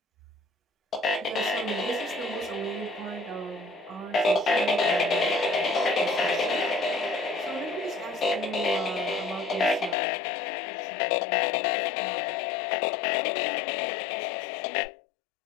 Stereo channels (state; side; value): drops out; right; at 10.0 s